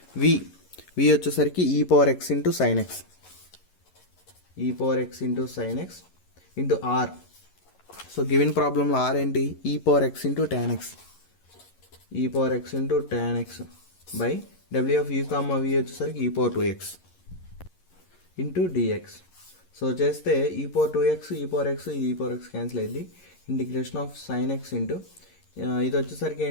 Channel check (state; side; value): late; right; 11 ms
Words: v వచ్చేసరికి e power x into sine x, e power x into sine x into r. So given ప్రాబ్లంలో ఆర్ ఏంటి, e power x into tan x, e power x into tan x by డబ్ల్యూ ఆఫ్ యూ కామ వి వచ్చేసరికి e power 2x into dx. So చేస్తే ఈ పవర్ 2x ఈ పవర్ ఎక్స్ ఇది ఈ పవర్ ఎక్స్ క్యాన్సిల్ అయింది, integration of sine x into ఇది వచ్చేసరికి